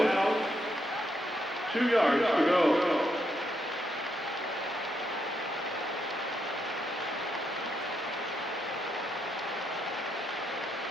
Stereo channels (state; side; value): normal; both; correlation 0.79